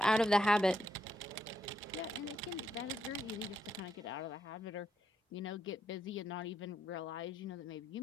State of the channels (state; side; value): normal; both; correlation 0.79